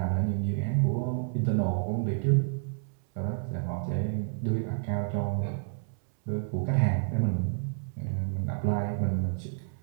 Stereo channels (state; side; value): silent; left; 58 dB below the other